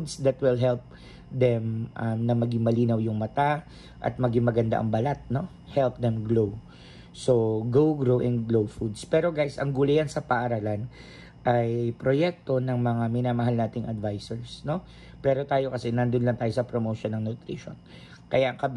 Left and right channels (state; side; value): identical; both; correlation 1.00